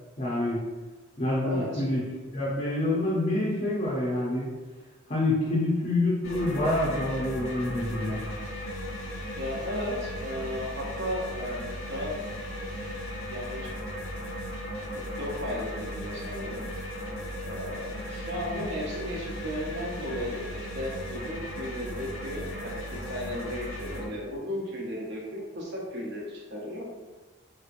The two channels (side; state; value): both; normal; correlation 0.49